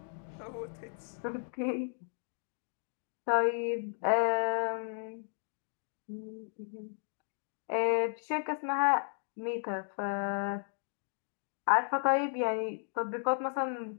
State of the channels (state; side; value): silent; right; digital silence